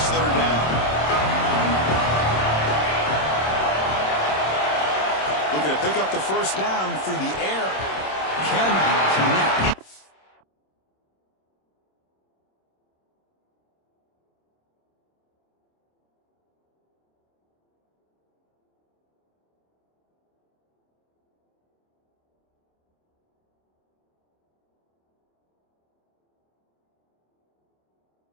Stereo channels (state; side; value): late; right; 26 ms